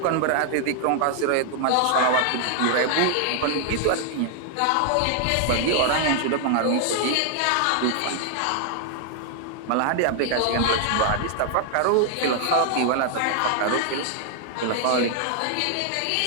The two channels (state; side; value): different; both; correlation 0.00